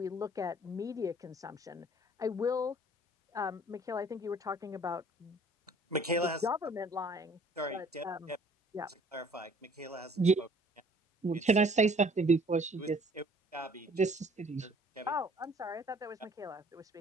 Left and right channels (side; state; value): both; normal; correlation 0.55